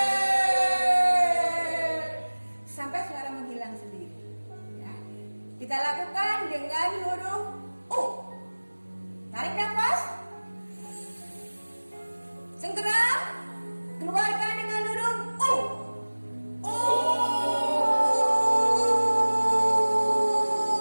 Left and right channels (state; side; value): inverted; both; correlation -1.00